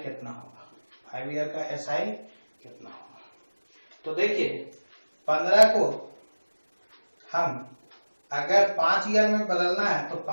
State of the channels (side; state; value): both; inverted; correlation -1.00